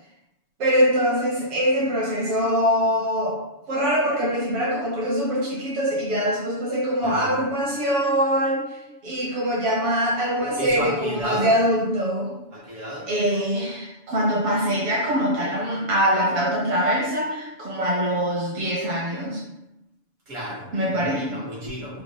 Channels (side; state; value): left; late; 7.0 ms